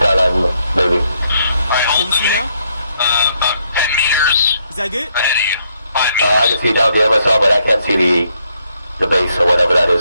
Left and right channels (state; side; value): inverted; both; correlation -0.74